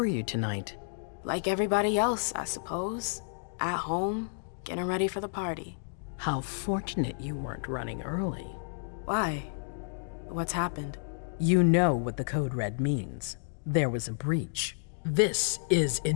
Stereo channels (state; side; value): silent; right; digital silence